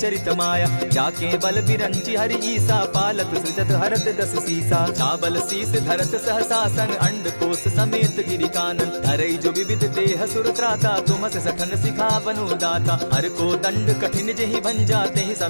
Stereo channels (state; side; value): inverted; both; correlation -1.00